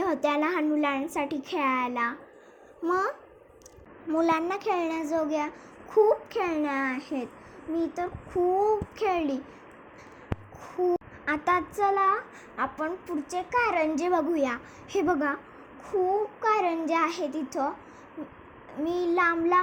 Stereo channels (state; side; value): identical; both; correlation 1.00